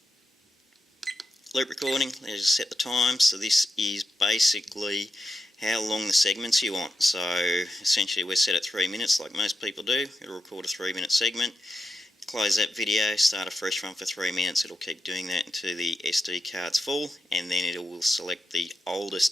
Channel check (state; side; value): normal; both; correlation 0.87